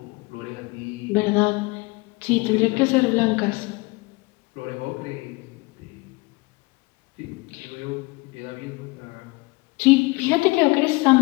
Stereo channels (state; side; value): quieter; right; 24.7 dB